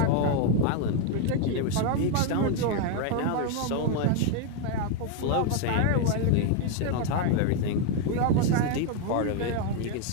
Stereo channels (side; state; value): both; different; correlation 0.00